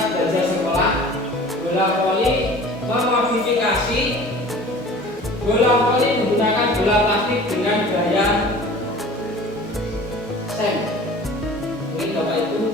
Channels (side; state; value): both; normal; correlation 0.44